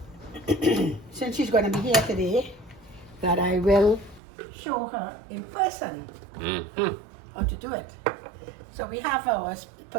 since she's going to be here today, that I will show her in person how to do it. So we have our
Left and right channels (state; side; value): drops out; left; at 4.2 s